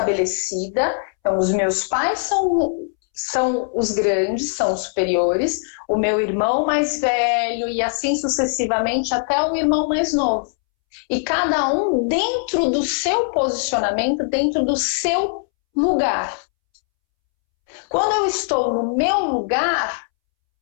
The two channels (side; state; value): right; silent; 65 dB below the other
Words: então os meus pais são os grandes, são os superiores, o meu irmão mais velho e assim sucessivamente até o irmão mais novo. E cada um dentro do seu posicionamento, dentro do seu lugar. Quando eu estou no meu lugar,